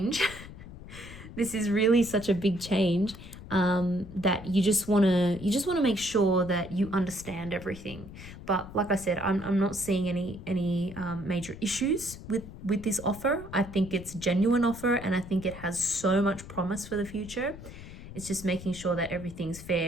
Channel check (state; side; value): noise; left; rumble, 14 dB below the sound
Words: This is really such a big change, that you just want to make sure that you understand everything. But like I said, I'm not seeing any major issues with this offer. I think it's a genuine offer, and I think it has so much promise for the future. It's just making sure that everything's